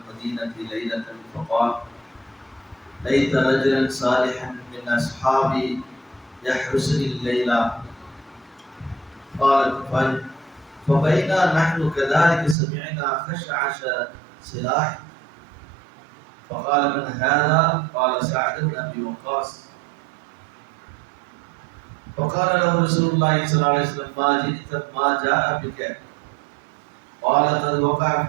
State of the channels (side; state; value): left; drops out; at 12.6 s